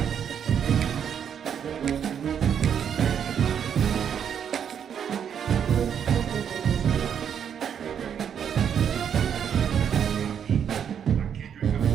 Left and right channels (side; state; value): left; quieter; 8.3 dB